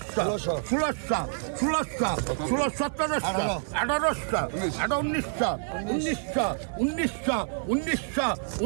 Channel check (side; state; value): left; silent; digital silence